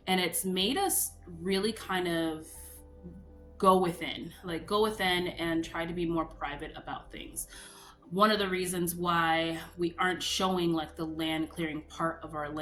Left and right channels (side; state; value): both; identical; correlation 1.00